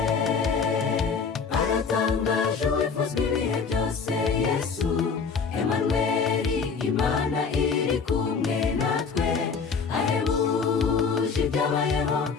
Aratangaje uwifuzwa ibihe byose, Yesu Emanueli, Imana iri kumwe natwe, ahebuje ibyabayeho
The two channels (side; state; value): right; quieter; 5.5 dB